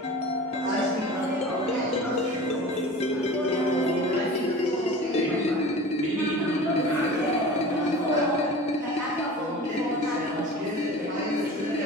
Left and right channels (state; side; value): normal; both; correlation 0.37